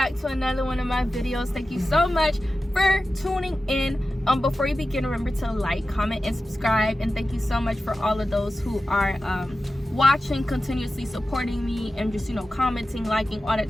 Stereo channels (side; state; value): both; normal; correlation 0.93